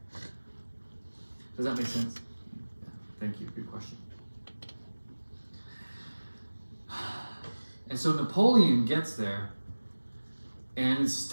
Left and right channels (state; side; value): inverted; both; correlation -1.00